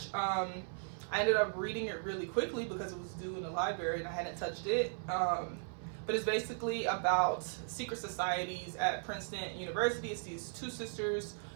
I ended up reading it really quickly because it was due in the library and I hadn't touched it. But it's basically about secret societies at Princeton University. It's these two sisters.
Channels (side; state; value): left; silent; 53 dB below the other